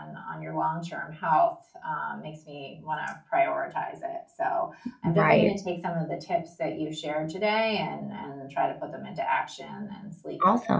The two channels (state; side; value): identical; both; correlation 1.00